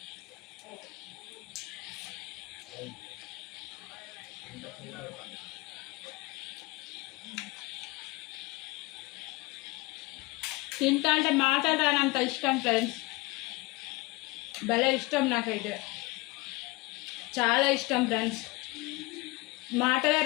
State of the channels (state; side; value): quieter; right; 23.0 dB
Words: తింటా అంటే మాట్లాడాలంత ఇష్టం ఫ్రెండ్స్. భలే ఇష్టం, నాకైతే చాలా ఇష్టం ఫ్రెండ్స్. మాటలే